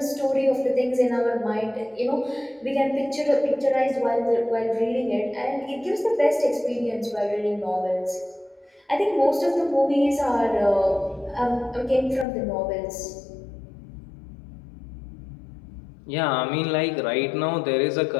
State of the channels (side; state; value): right; drops out; at 12.2 s